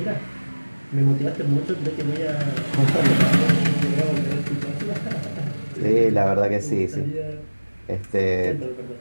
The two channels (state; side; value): inverted; both; correlation -1.00